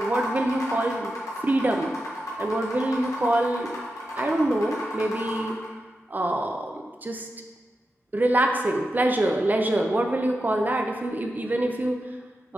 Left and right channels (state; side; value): normal; both; correlation 0.89